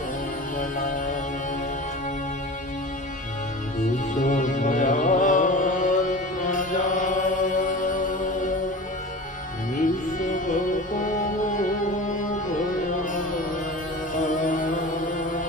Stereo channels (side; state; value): both; normal; correlation 0.34